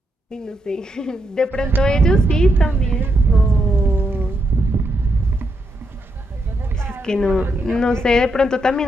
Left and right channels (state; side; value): normal; both; correlation 0.81